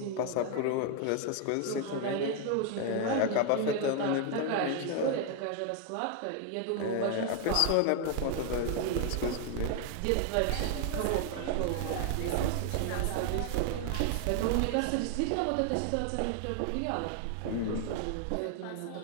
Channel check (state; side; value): different; both; correlation 0.00